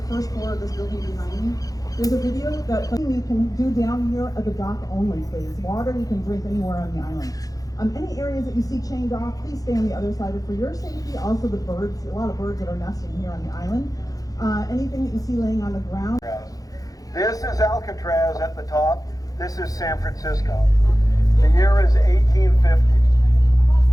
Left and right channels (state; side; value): late; right; 0.17 ms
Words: first floor of this building behind me. There's a video that you can do down here at the dock only, please. Water you can drink anywhere on the island. Any areas that you see chained off, please stay on the other side. For your safety, also the birds, a lot of birds that are nesting here on the island. Anything that you see laying on the ground. This is Alcatraz at the top. This is San Francisco. The year is 1850.